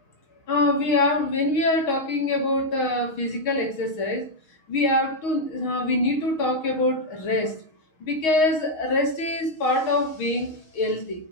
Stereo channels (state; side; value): late; right; 6.3 ms